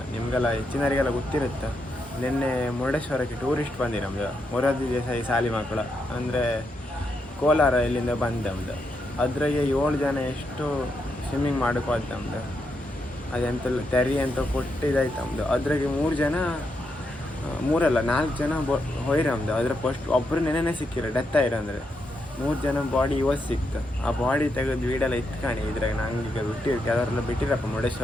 ನಿಮಗೆಲ್ಲ ಹೆಚ್ಚಿನವರಿಗೆಲ್ಲ ಗೊತ್ತಿರುತ್ತೆ, ನಿನ್ನೆ ಮುರುಡೇಶ್ವರಕ್ಕೆ ಟೂರಿಸ್ಟ್ ಬಂದಿ ನಮ್ಮದು ಮೊರಾರ್ಜಿ ದೇಸಾಯಿ ಶಾಲೆ ಮಕ್ಕಳು ಅಂದರೆ ಕೋಲಾರ ಇಲ್ಲಿಂದ ಬಂದು ನಮ್ಮದು. ಅದ್ರಾಗೆ 7 ಜನ ಎಷ್ಟು ಸ್ವಿಮ್ಮಿಂಗ್ ಮಾಡೋಕೆ ಹೋದ್ ನಮ್ಮದು. ಅದೆಂತೆಲ್ಲ ತೆರಿ ಅಂತ ಕೊಟ್ಟಿದ್ದಾಯ್ತು ನಮ್ಮದು. ಅದ್ರಾಗೆ 4 ಜನ ಹೋಯ್ರಿ ನಮ್ಮದು. ಅದ್ರ ಫಸ್ಟ್ ಒಬ್ಬರು ನೆನೆನೇ ಸಿಕ್ಕಿರೋ, ಡೆತ್ ಆಯ್ರು ಅಂದರೆ 3 ಜನ ಬಾಡಿ ಇವತ್ತು ಸಿಕ್ತು. ಆ ಬಾಡಿ ತೆಗೆದು ವೀಡೆಲ್ಲ ಇಟ್ಕಾಣಿ. ಇದ್ರಾಗ ನಂಗೆ ಈಗ ಬಿಟ್ಟಿರ್ತೀವಿ, ಅದರೆಲ್ಲ ಬಿಟ್ಟಿರಪ್ಪ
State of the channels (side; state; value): both; normal; correlation 0.82